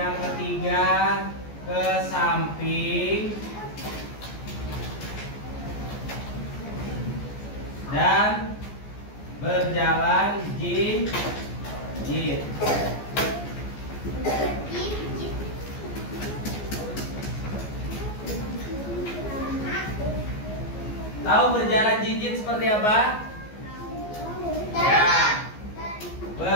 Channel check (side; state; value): right; late; 14 ms